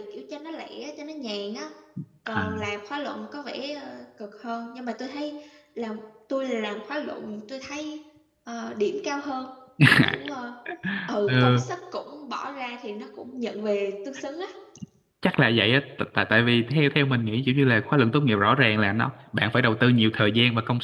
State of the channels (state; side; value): identical; both; correlation 1.00